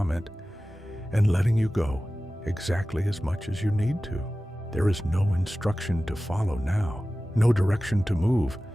and letting you go exactly as much as you need to. There is no instruction to follow now, no direction to move.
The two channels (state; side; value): normal; both; correlation 0.96